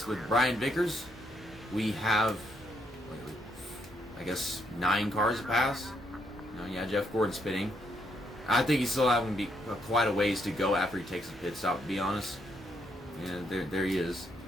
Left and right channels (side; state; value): both; normal; correlation 0.74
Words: with Brian Vickers, we have, I guess, 9 cars to pass. Yeah, Jeff Gordon spinning. I think he's still having quite a ways to go after he takes a pit stop, to be honest. Yeah, there he is.